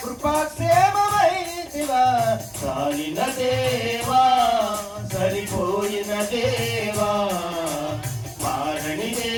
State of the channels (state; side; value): identical; both; correlation 1.00